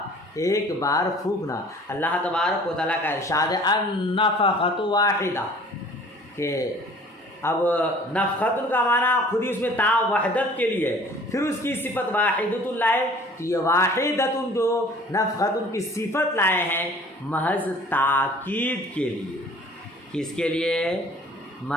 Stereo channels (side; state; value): both; normal; correlation 0.50